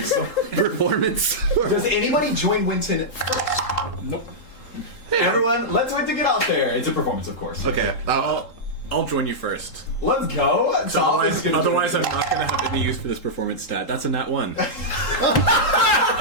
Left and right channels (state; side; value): late; right; 3.8 ms